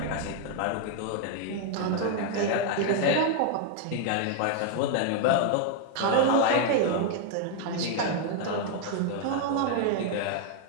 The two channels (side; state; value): both; different; correlation 0.00